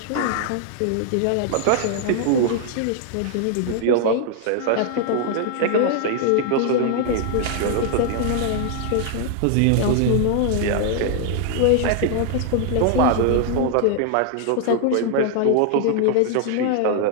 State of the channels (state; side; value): different; both; correlation -0.01